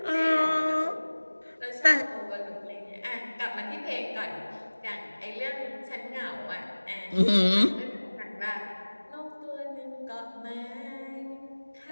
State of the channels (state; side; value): inverted; both; correlation -1.00